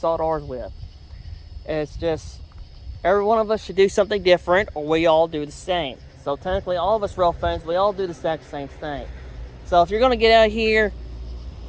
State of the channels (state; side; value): identical; both; correlation 1.00